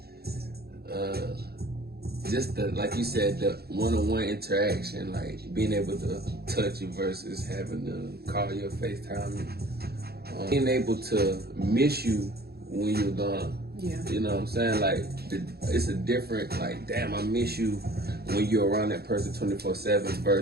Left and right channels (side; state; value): left; late; 0.46 ms